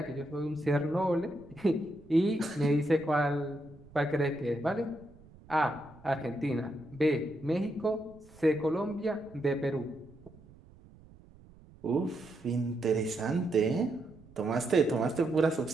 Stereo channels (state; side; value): noise; right; rumble, 23 dB below the sound